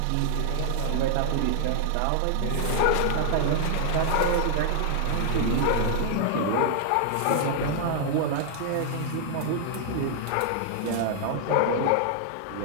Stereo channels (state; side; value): different; both; correlation 0.00